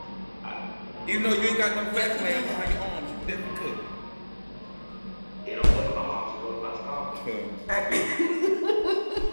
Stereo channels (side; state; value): both; inverted; correlation -1.00